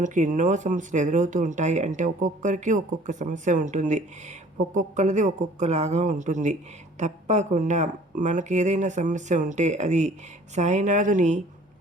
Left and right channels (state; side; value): normal; both; correlation 0.52